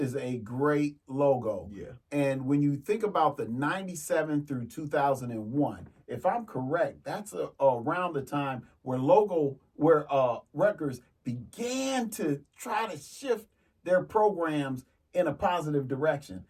a great logo. Yeah. And when you think about the 97 through 2001, if I'm correct, that's around the time where Rutgers began to try to shift their programs in a positive direction.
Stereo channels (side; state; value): both; identical; correlation 1.00